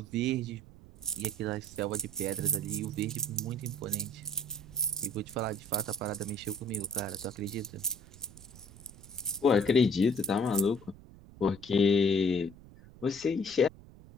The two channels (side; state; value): right; noise; rumble, 20 dB below the sound